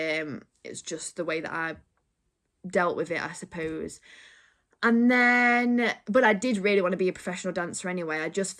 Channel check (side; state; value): both; identical; correlation 1.00